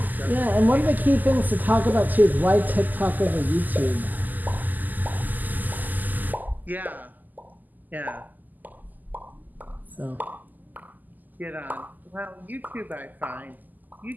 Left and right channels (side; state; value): left; late; 0.084 ms